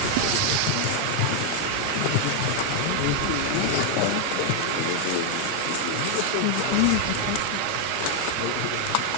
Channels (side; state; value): both; different; correlation 0.00